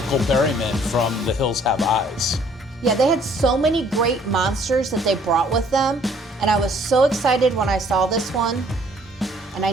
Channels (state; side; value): normal; both; correlation 0.60